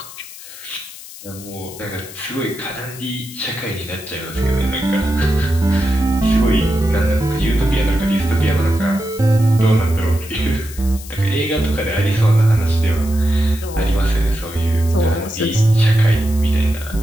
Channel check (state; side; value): noise; left; hiss, 15 dB below the sound